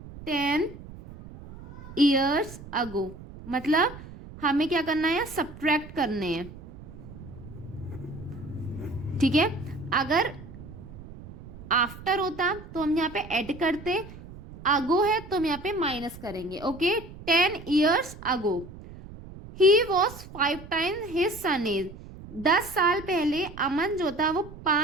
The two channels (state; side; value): noise; right; rumble, 16 dB below the sound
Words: 10 ईयर्स अगो, मतलब हमें क्या करना है? सब्ट्रैक्ट करने हैं। ठीक है, अगर आफ्टर होता तो हम यहाँ पे ऐड करते, अगो है तो हम यहाँ पे माइनस करेंगे। Okay, 10 years ago he was 5 times his son age. 10 साल पहले अमन जो था वो